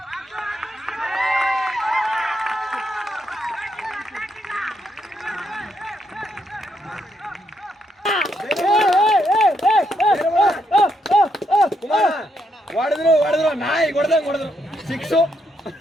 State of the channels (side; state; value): both; normal; correlation 0.77